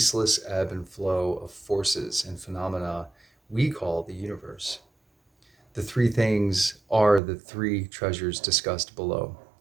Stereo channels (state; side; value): drops out; left; at 7.2 s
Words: ebb and flow of forces and phenomena we call the universe. The three things are the three treasures discussed below.